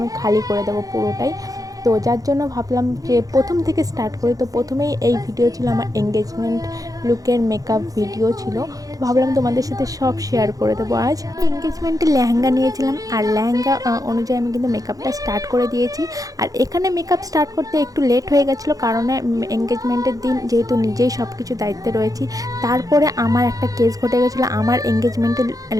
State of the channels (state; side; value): late; left; 0.17 ms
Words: খালি করে দেবো পুরোটাই। তো যার জন্য ভাবলাম যে প্রথম থেকে স্টার্ট করি। তো প্রথমেই এই ভিডিও ছিল আমার এঙ্গেজমেন্ট লুকের মেকআপ ভিডিও ছিল। তো ভাবলাম তোমাদের সাথে সব শেয়ার করে দেবো। আজ এঙ্গেজমেন্টে লেহেঙ্গা নিয়েছিলাম আর লেহেঙ্গা অনুযায়ী আমি কিন্তু মেকআপটা স্টার্ট করে দিয়েছি। আর এখানে মেকআপ স্টার্ট করতে একটু লেট হয়ে গেছিলো, কারণ এঙ্গেজমেন্টের দিন যেহেতু নিজেই সব কিছু দায়িত্বে রয়েছি। তারপরে আমার একটা কেস ঘটে গেছিলো, আমার এঙ্গেজমেন্টের